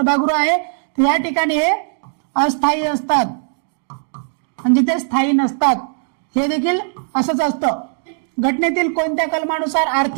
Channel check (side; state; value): left; silent; digital silence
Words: आहे, या ठिकाणी हे अस्थायी असतात म्हणजे ते स्थायी नसतात. हे देखील असंच असतं. घटनेतील कोणत्या कलमानुसार